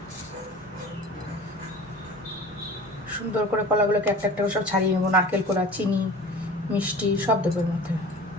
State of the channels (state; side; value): normal; both; correlation 0.39